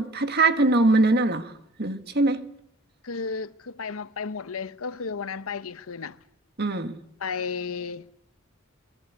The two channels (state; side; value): normal; both; correlation 0.43